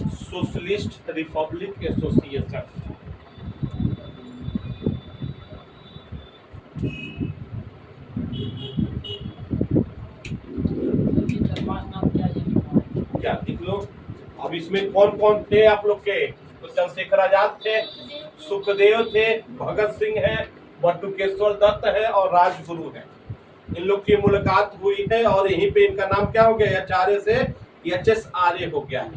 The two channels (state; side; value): identical; both; correlation 1.00